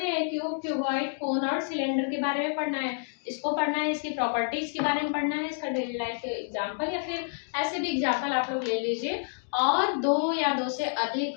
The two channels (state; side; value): silent; right; digital silence